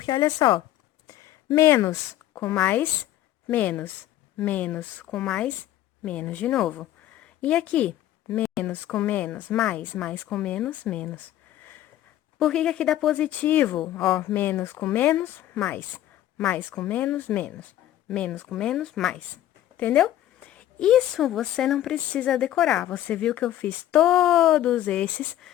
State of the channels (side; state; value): right; quieter; 13.2 dB